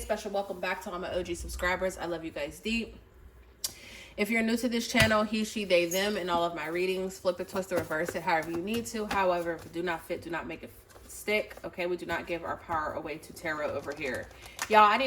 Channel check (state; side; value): identical; both; correlation 1.00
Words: welcome back to all my OG subscribers. I love you guys deep. If you're new to this channel, he, she, they, them, and all of my readings, flip it, twist it, reverse it, however you need to. However, if it do not fit, do not make it stick. Okay, we do not give our power away to tarot over here. Y'all, I